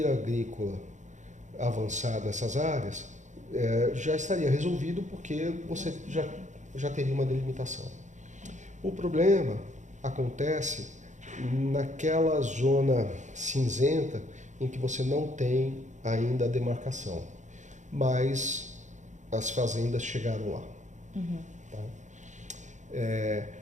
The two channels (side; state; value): left; late; 0.35 ms